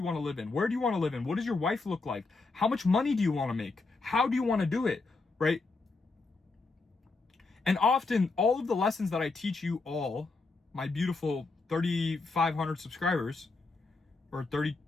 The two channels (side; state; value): right; quieter; 3.8 dB